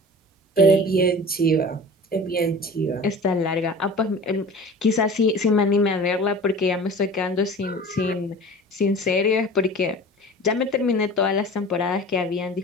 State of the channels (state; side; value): normal; both; correlation 0.39